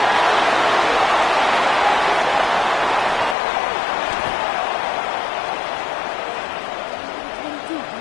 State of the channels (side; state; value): right; drops out; at 3.4 s